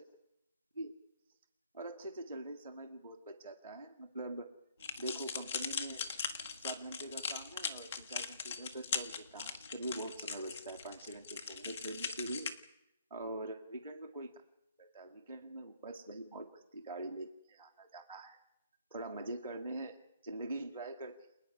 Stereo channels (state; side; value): inverted; both; correlation -0.61